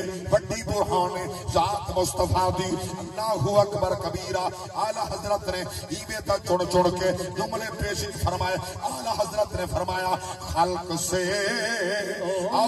بڑی برہان ہے ذات مصطفیٰ دی اللہ اکبر کبیرہ اعلی حضرت نے ایویں تا چن چن کے جملے پیش فرمائے اعلی حضرت نے فرمایا خلق سے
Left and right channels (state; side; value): identical; both; correlation 1.00